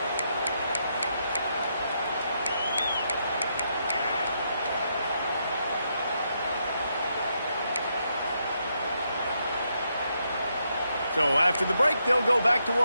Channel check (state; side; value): inverted; both; correlation -0.79